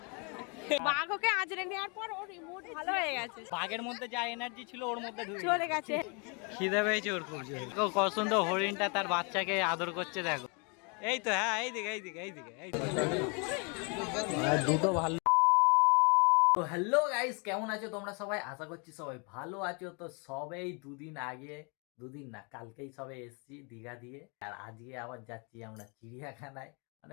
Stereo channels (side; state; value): right; quieter; 34.2 dB